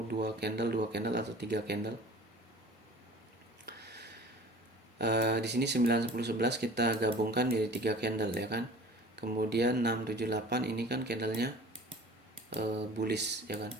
2 candle atau 3 candle. Di sini 9 10 11 kita gabungkan jadi 3 candle ya kan. Kemudian 6 7 8 ini kan candlenya bullish ya kan.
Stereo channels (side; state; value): both; normal; correlation 0.44